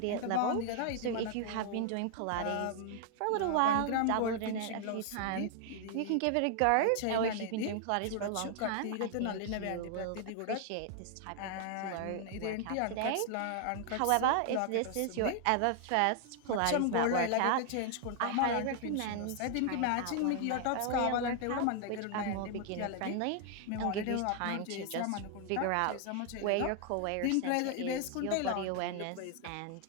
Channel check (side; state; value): both; different; correlation 0.00